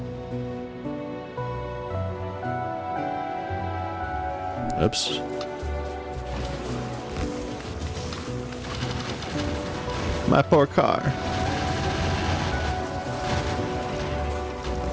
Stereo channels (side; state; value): both; identical; correlation 1.00